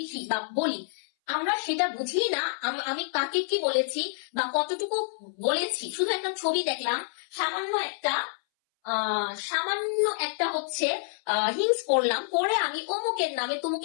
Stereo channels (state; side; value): silent; right; 59 dB below the other